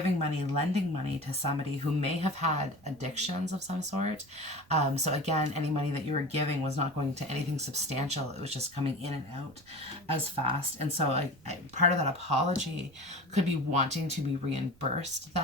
money, lending money to somebody who may have had addictions of some sort. So again, any money that you were giving was not going to anything substantial. It was just coming in and out as fast. And so part of that apology could be wanting to be reimbursed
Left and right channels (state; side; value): noise; right; rumble, 27 dB below the sound